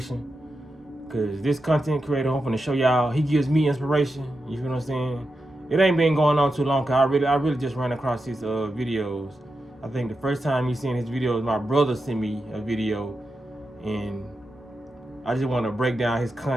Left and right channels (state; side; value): normal; both; correlation 0.89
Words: because this content creator, I'm going to show y'all, he gives me inspiration. You feel what I'm saying? It ain't been going on too long, because I really just ran across his videos. I think the first time you seen his videos, my brother sent me a video, and I just want to break down his